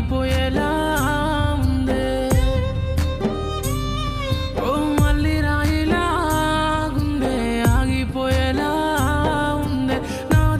ఉందే ఓ మళ్ళీ రాయిలా గుండె ఆగిపోయేలా ఉందే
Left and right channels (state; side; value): identical; both; correlation 1.00